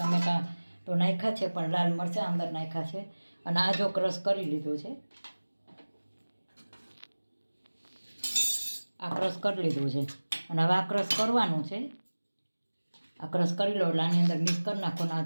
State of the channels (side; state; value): both; inverted; correlation -1.00